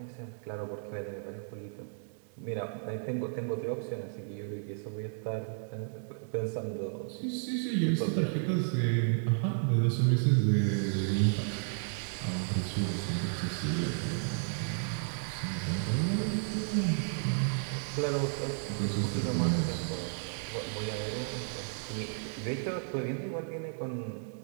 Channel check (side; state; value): left; silent; digital silence